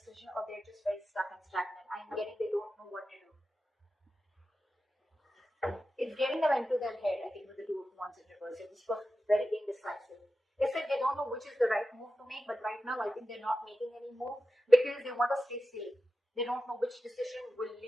or they're just very stuck and stagnant. I'm getting they don't know what to do. It's getting them into their head, I think, with the Two of Wands in reverse. This person is very indecisive. They said they don't know which is the right move to make, but right now I think they're not making any move because they want to stay safe. They don't know which decision will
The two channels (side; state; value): both; normal; correlation 0.92